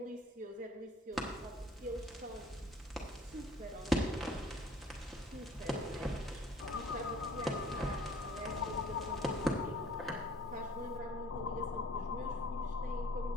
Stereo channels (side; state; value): both; normal; correlation 0.54